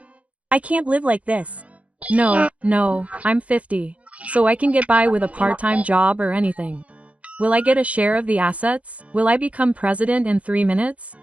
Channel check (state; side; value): late; left; 0.065 ms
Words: I can't live like this. No, I'm 50, so I can get by with a part-time job or anything. Will I get a share of the assets? Will I become president in 3 minutes?